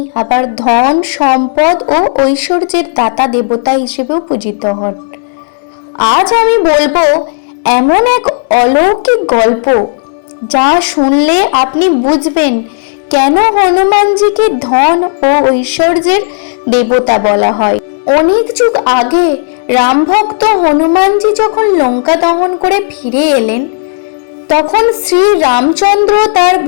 আবার ধন, সম্পদ ও ঐশ্বর্যের দাতা দেবতা হিসেবেও পূজিত হন। আজ আমি বলবো এমন এক অলৌকিক গল্প, যা শুনলে আপনি বুঝবেন কেন হনুমানজিকে ধন ও ঐশ্বর্যের দেবতা বলা হয়। অনেক যুগ আগে রামভক্ত হনুমানজি যখন লঙ্কা দহন করে ফিরে এলেন, তখন শ্রী রামচন্দ্র তার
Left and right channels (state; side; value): silent; right; digital silence